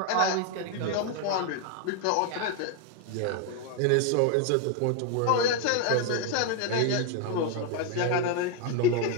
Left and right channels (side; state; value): both; different; correlation 0.01